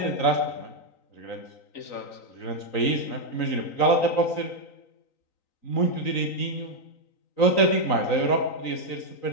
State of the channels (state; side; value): late; right; 3.9 ms